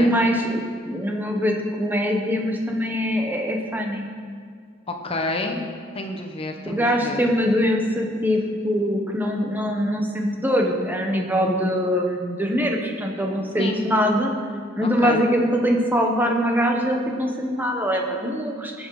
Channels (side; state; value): both; normal; correlation 0.65